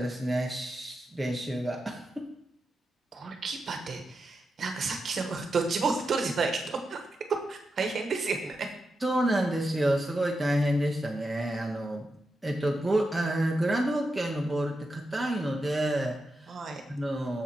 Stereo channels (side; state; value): both; normal; correlation 0.88